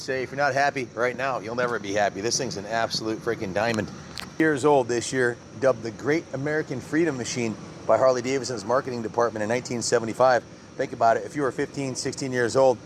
if you're not happy right now, you'll never be happy. This thing's an absolute freaking diamond. Years old this year, dubbed the Great American Freedom Machine by Harley Davidson's marketing department in 1975. Think about it, if you were 15, 16 years old,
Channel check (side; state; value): both; identical; correlation 1.00